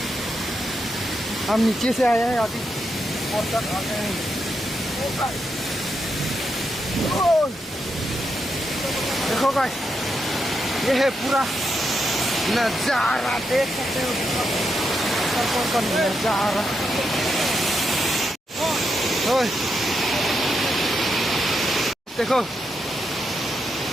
हम नीचे से आए हैं, अभी ऊपर तक आ गए हैं। ओ देखो गाइस, ये है पूरा नजारा, देख सकते हो ऊपर का नजारा। ओए देखो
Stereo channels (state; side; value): normal; both; correlation 0.83